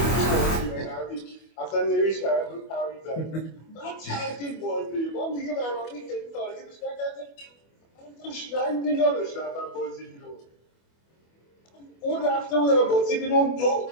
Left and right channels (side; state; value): right; late; 25 ms